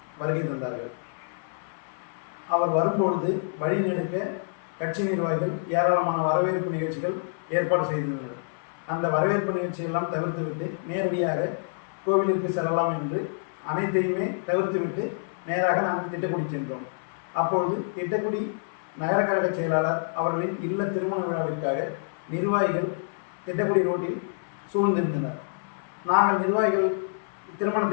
வருகை தந்தார்கள். அவர் வரும்பொழுது வழிநெடுக்க கட்சி நிர்வாகிகள் ஏராளமான வரவேற்பு நிகழ்ச்சிகள் ஏற்பாடு செய்திருந்தனர். அந்த வரவேற்பு நிகழ்ச்சியெல்லாம் தவிர்த்துவிட்டு நேரடியாக கோவிலுக்கு செல்லலாம் என்று அனைத்தையுமே தவிர்த்துவிட்டு நேராக நாங்கள் திட்டக்குடி சென்றோம். அப்பொழுது திட்டக்குடி நகர கழக செயலாளர் அவர்களின் இல்ல திருமண விழாவிற்காக நிர்வாகிகள் திட்டக்குடி ரோட்டில் சூழ்ந்திருந்தனர். நாங்கள் நிர்வாகிகள்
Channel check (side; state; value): right; silent; 60 dB below the other